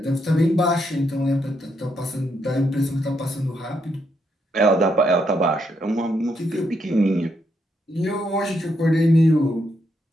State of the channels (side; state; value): both; normal; correlation 0.78